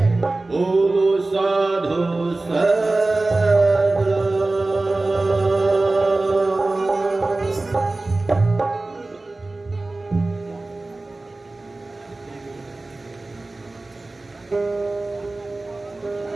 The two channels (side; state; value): left; quieter; 3.1 dB